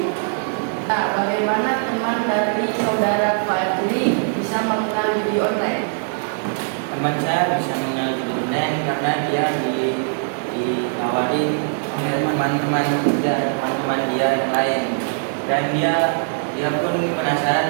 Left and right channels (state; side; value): silent; left; 65 dB below the other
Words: Nah, bagaimana teman dari saudara Fadli bisa mengenal judi online? Teman saya bisa mengenal judi online karena dia ditawarin oleh teman-teman dia yang lain, dan dia pun